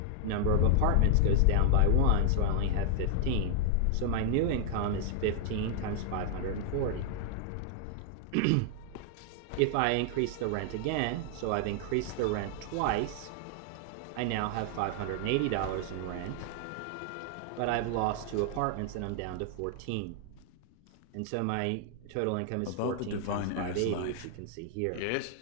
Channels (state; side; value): different; both; correlation 0.00